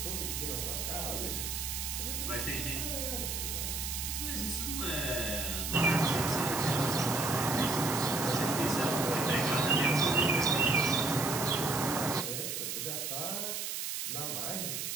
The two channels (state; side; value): noise; right; hiss, 3 dB below the sound